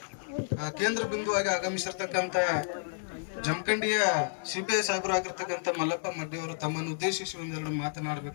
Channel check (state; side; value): silent; right; digital silence